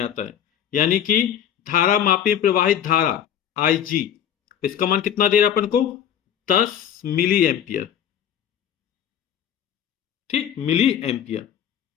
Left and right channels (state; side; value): quieter; right; 9.5 dB